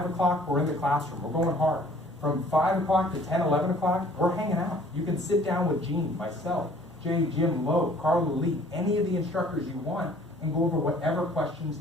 o'clock, we're in the classroom. We're going hard. From 5 o'clock to 10, 11 o'clock, we're hanging out. You can sit down with Gene, myself, Jay, Jim, Lowe, Carla Lee, any of the instructors you want, and go over whatever questions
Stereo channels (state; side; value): normal; both; correlation 0.54